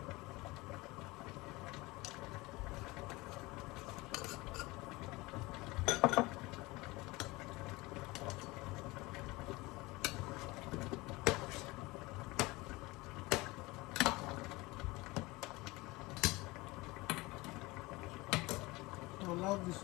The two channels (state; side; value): quieter; right; 22.2 dB